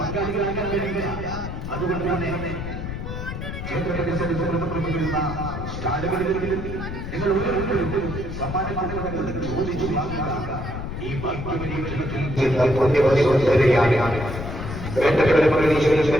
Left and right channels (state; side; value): noise; left; rumble, 6 dB below the sound